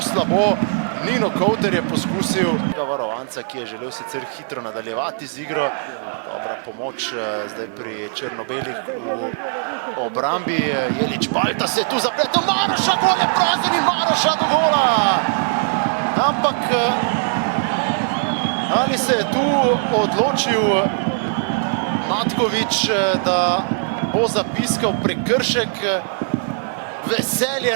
slabo. Nino Kouter je poskusil varovanca, ki je želel sicer hitro nadaljevati z igro. Dobra pomoč zdaj pri črno-belih v obrambi. Jelič Balta se je tu zapletel, Maroša, gol je prazen in Maroša do gola. Ampak ali se je tu odločil Matkovič, da bo zapiskal prekršek?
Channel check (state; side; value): silent; left; 65 dB below the other